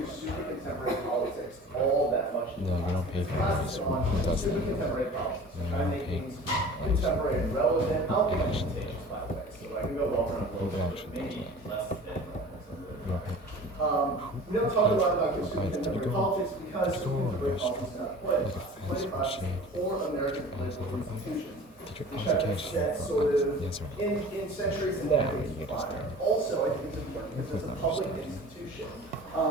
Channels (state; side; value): normal; both; correlation 0.42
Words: super contemporary politics all that much. No, we don't pay for this. Super contemporary politics. We're trying to make things contemporary and relevant. I'll be contagious, by the way, so I can go over and over, maybe less than we don't talk a lot about consumer contemporary politics because contemporary politics is not political. Political is for American political institutions. Which have set sort of in centuries and decades prior. Also, I think it's important because it's a public institution.